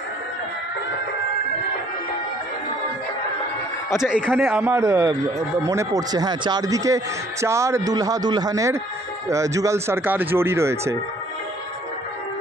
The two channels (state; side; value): normal; both; correlation 0.59